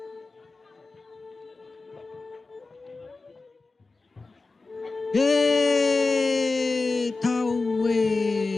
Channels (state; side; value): quieter; right; 3.7 dB